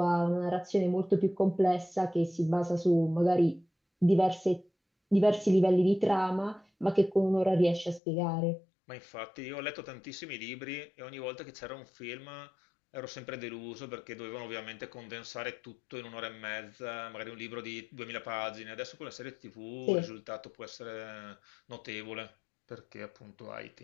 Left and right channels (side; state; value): right; drops out; at 8.0 s